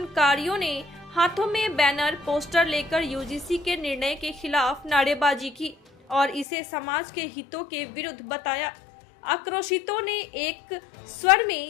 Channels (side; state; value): right; drops out; at 6.5 s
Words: ने हाथों में बैनर पोस्टर लेकर यूजीसी के निर्णय के खिलाफ नारेबाजी की और इसे समाज के हितों के विरुद्ध बताया। आक्रोशितों ने एक स्वर